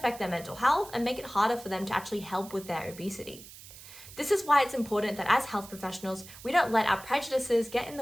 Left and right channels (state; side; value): noise; right; hiss, 17 dB below the sound